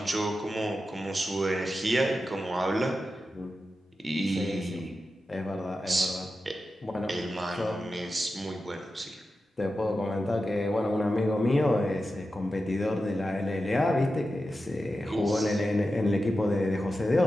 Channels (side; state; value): both; normal; correlation 0.91